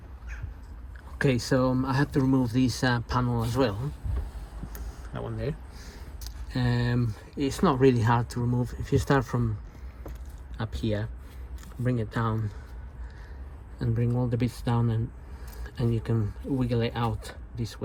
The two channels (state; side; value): identical; both; correlation 1.00